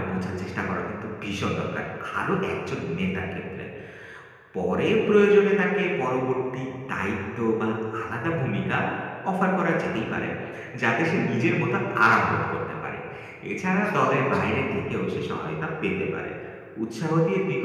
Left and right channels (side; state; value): both; identical; correlation 1.00